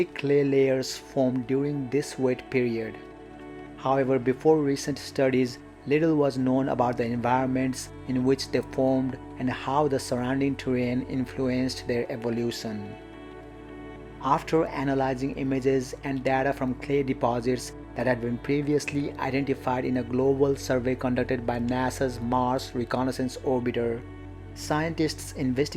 clay layers formed during this wet period. However, before recent studies, little was known about the environments in which they formed and how the surrounding terrain influenced their evolution. After analyzing images and data from clay deposits that had been previously identified in a global survey conducted by NASA's Mars Reconnaissance Orbiter, scientists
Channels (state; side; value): identical; both; correlation 1.00